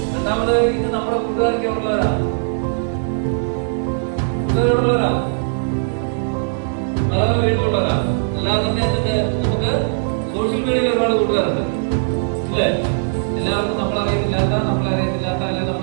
രണ്ടാമത് ഇത് നമ്മുടെ കൂട്ടുകാർക്ക് ഉള്ളവരാണ്, കൂട്ടുകാരുള്ളവരാണ്, പല വീട്ടിലുള്ളവരാണ്. അല്ലാതെ തന്നെ എന്നിട്ട് നമുക്ക് സോഷ്യൽ മീഡിയയിൽ ഒരുപാട് കൂട്ടുകാരുണ്ട് ഇല്ലേ? എല്ലാവർക്കും നമ്മളറിയത്തില്ലാത്ത അല്ലെങ്കിൽ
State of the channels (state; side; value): silent; left; 66 dB below the other